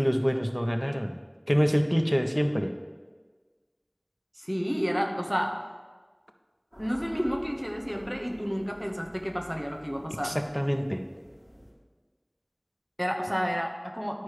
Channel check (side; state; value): both; identical; correlation 1.00